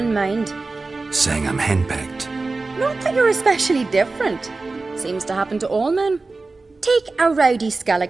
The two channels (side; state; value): left; quieter; 3.6 dB